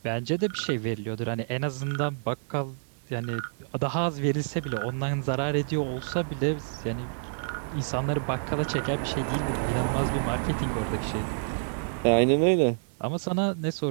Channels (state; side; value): silent; left; digital silence